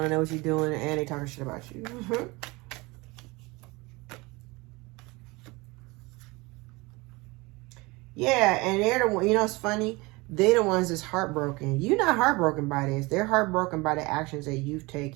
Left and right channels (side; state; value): left; quieter; 24.1 dB